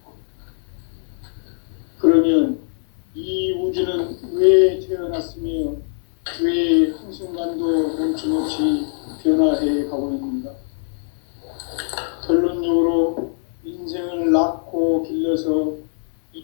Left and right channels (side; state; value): right; silent; 62 dB below the other